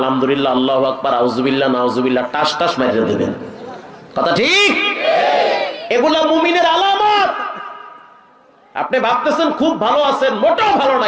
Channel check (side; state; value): both; identical; correlation 1.00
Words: আল্লাহু আকবার, আউযুবিল্লাহ, নাউযুবিল্লাহ, টাস টাস মেরে দেবেন। কথা ঠিক? এগুলা মুমিনের আলামত। আপনি ভাবতেছেন খুব ভালো আছেন, মোটেও ভালো